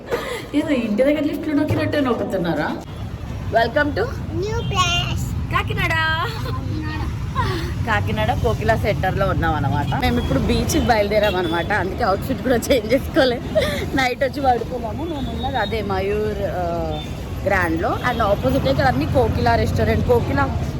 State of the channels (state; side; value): identical; both; correlation 1.00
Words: ఏదో ఇంటి దగ్గర లిఫ్ట్ నొక్కినట్టే నొక్కుతున్నారా. Welcome to new place Kakinada. Kakinada Kokila సెంటర్లో ఉన్నాం అనమాట. మేము ఇప్పుడు బీచ్కి బయలుదేరాం అనమాట. అందుకే అవుట్ఫిట్ కూడా చేంజ్ చేసుకోలేదు. నైట్ వచ్చి పడుకున్నాము. మేము ఉన్నది అదే మయూర్ గ్రాండ్లో. అండ్ ఆపోజిట్ ఇక్కడ అన్ని కోకిలా రెస్టారెంట్. కోకిలా